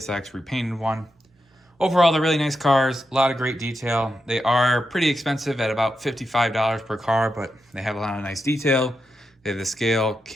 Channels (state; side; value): normal; both; correlation 0.87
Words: repainted one. Overall, they're really nice cars, a lot of great detail. They are pretty expensive at about $55 per car, but they have a lot of nice detail. They have the scale,